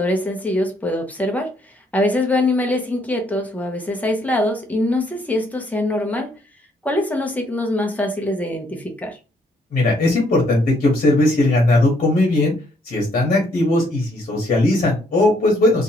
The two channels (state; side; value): normal; both; correlation 0.69